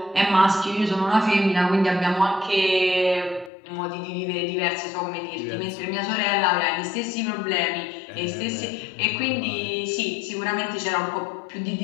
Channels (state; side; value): drops out; right; at 3.5 s